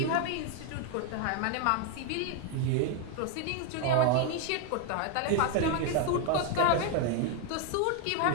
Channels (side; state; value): both; different; correlation 0.01